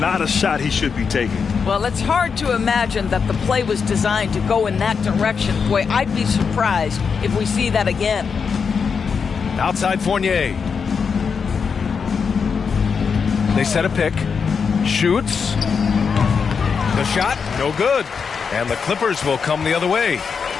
a shot he should be taking. Well, it's hard to imagine that the play was designed to go in that direction. Boy, I'd be surprised if we see that again. Outside Fournier. They set a pick. Shoots. The shot, no good. And the Clippers will come the other way.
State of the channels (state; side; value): quieter; right; 5.9 dB